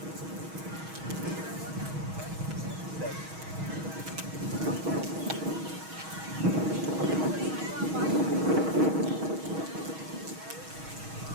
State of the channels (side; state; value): left; late; 6.3 ms